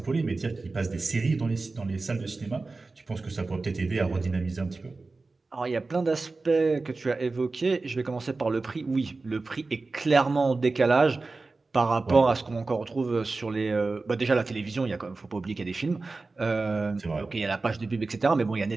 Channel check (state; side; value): quieter; left; 3.7 dB